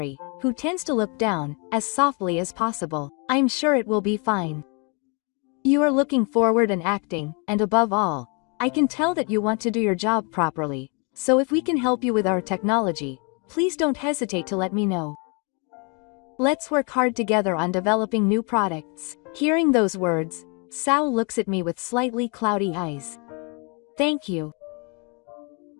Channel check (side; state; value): right; quieter; 34.2 dB